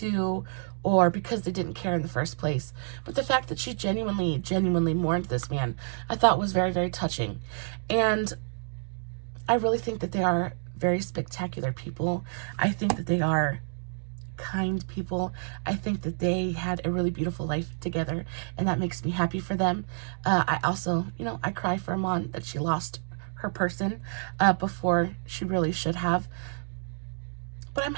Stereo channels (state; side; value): silent; left; digital silence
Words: or because they didn't care in the first place. But the fact that she genuinely mourned this man, I thought was very, very touching. And I really think that they are very spectacular people. I think that they are kind people. I think that they had a really beautiful life together, and that makes me happy for them. I also, you know, I cry for Iman that she lost her person before she really should have. But I'm